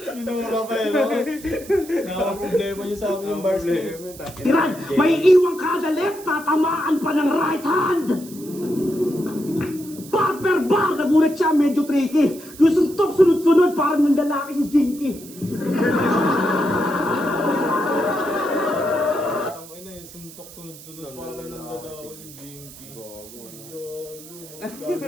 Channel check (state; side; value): noise; right; hiss, 18 dB below the sound